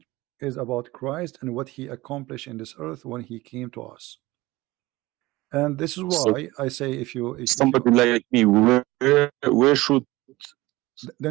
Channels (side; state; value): left; quieter; 19.7 dB